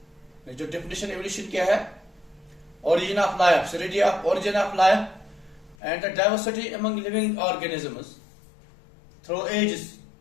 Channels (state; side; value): drops out; right; at 5.8 s